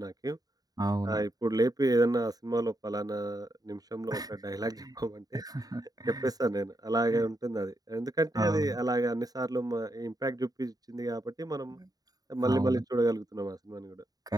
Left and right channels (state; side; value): late; left; 0.18 ms